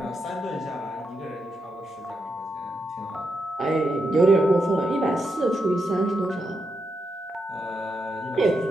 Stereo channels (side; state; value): both; normal; correlation 0.84